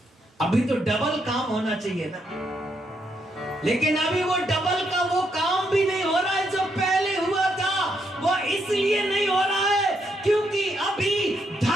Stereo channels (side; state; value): both; normal; correlation 0.77